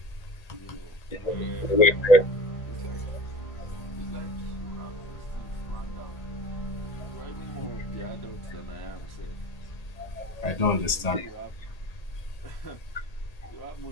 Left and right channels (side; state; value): right; late; 1.8 ms